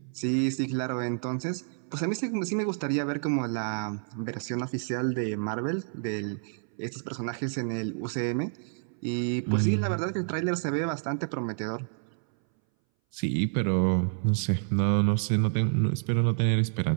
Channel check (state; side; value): silent; left; 59 dB below the other